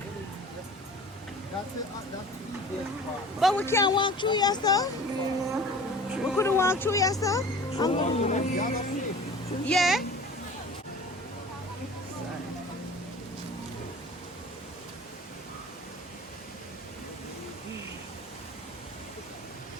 That's it. That's the easiest part. But we can't walk through your stuff? We couldn't walk through your stuff? Yeah?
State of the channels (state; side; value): normal; both; correlation 0.42